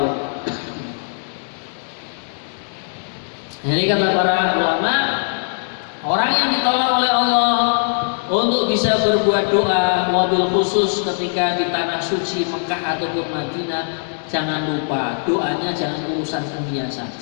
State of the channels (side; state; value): right; silent; digital silence